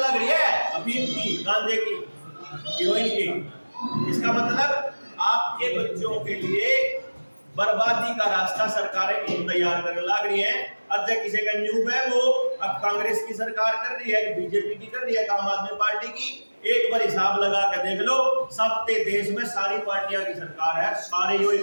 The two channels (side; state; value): both; inverted; correlation -1.00